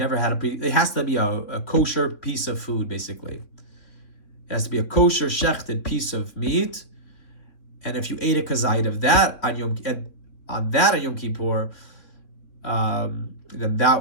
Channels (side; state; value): right; late; 3.6 ms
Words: had it has to be a kosher piece of food, basically. It has to be a kosher shechted piece of meat, and if you ate a kazayit of that on Yom Kippur, then